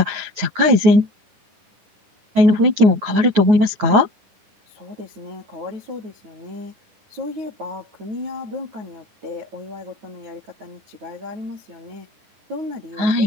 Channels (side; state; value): left; late; 9.5 ms